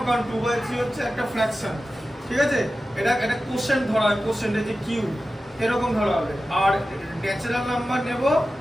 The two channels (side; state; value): both; normal; correlation 0.94